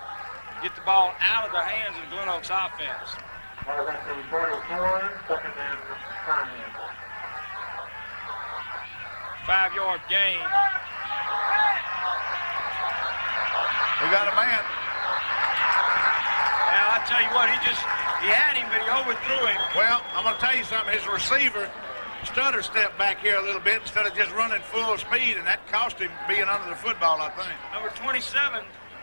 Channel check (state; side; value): inverted; both; correlation -1.00